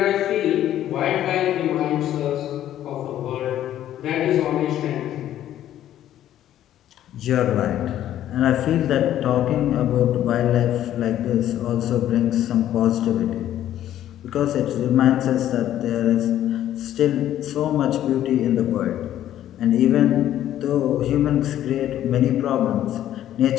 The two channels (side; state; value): right; quieter; 12.0 dB